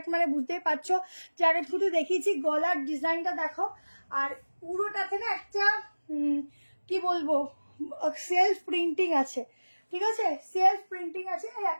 মানে বুঝতেই পারছো। যাকে শুধু দেখিয়েছি, গলার ডিজাইনটা দেখো, আর পুরোটাতে না একটা কি বলবো, সেলফ প্রিন্টিং আছে, ঠিক আছে, সেলফ প্রিন্টিং আছে। এই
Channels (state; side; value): inverted; both; correlation -1.00